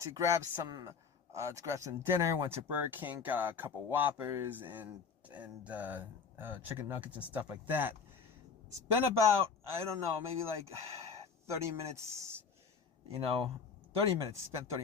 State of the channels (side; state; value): right; quieter; 5.6 dB